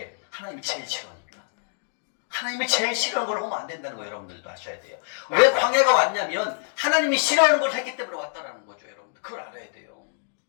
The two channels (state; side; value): silent; right; digital silence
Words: 하나님이 제일 싫어하니까. 하나님이 제일 싫어하는 걸 하면 안 된다는 거 여러분들도 아셔야 돼요. 왜 광야가 왔냐면 하나님이 싫어하는 걸 했기 때문에 왔다라는 거죠. 여러분들 그걸 알아야 돼요.